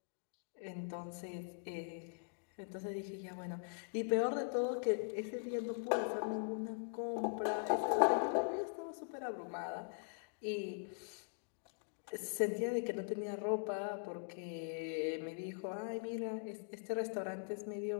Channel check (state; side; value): silent; right; digital silence